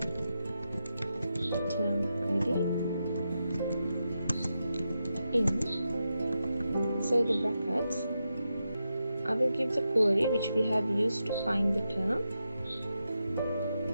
ID in. Inside the brackets I will give the query which we have used to find the term.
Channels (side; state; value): both; inverted; correlation -0.87